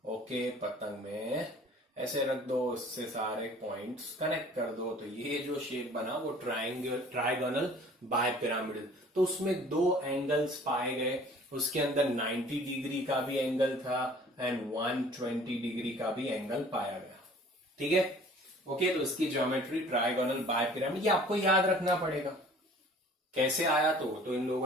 ओके, पतंग में ऐसे रख दो, उससे सारे पॉइंट्स कनेक्ट कर दो। तो ये जो शेप बना वो ट्राइगोनल बाय पिरामिडल। तो उसमें 2 एंगल्स पाए गए। उसके अंदर 90 डिग्री का भी एंगल था एंड 120 डिग्री का भी एंगल पाया गया। ठीक है। ओके, तो इसकी ज्योमेट्री ट्राइगोनल बाय पिरामिड। ये आपको याद रखना पड़ेगा। कैसे आया? तो इन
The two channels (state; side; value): normal; both; correlation 0.50